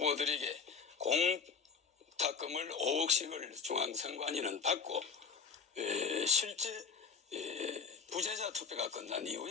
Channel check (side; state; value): right; quieter; 5.8 dB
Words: 공탁금을 5억씩을 중앙선관위는 받고 실제 부재자 투표가 끝난